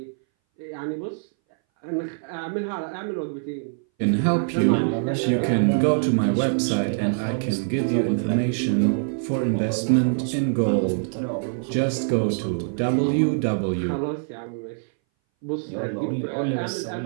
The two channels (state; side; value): silent; left; 60 dB below the other